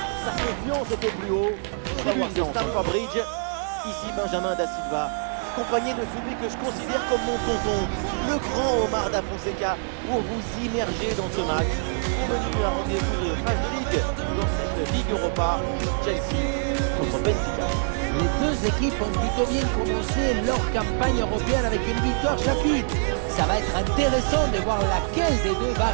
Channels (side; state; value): left; silent; 62 dB below the other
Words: Sa confiance était plus haut. Tribune de Stamford Bridge. Ici Benjamin Da Silva, accompagné de celui que je considère comme mon tonton, le grand Omar Da Fonseca, pour vous immerger dans ce match. Au menu, un rendez-vous de phase de ligue dans cette Ligue Europa, Chelsea contre Benfica. Les deux équipes ont plutôt bien commencé leur campagne européenne avec une victoire chacune. Ça va être intéressant de voir laquelle des deux va